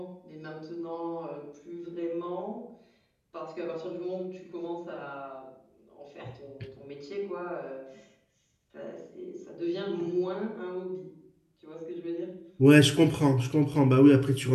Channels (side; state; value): both; identical; correlation 1.00